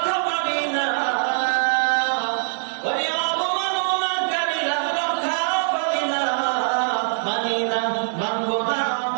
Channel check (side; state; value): left; silent; digital silence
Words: পাবি না ওরে অবমাননাকারীরা রক্ষা পাবি না মানি না মানব না